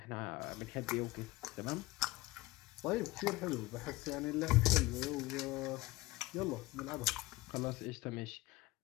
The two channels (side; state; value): right; quieter; 19.9 dB